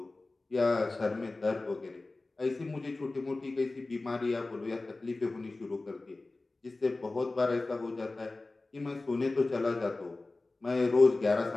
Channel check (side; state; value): right; quieter; 3.2 dB